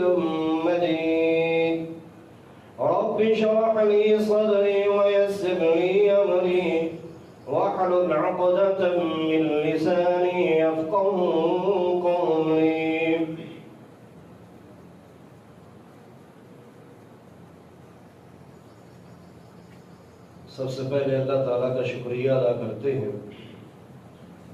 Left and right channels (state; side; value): identical; both; correlation 1.00